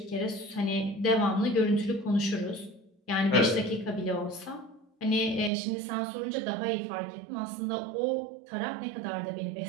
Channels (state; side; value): drops out; left; at 5.5 s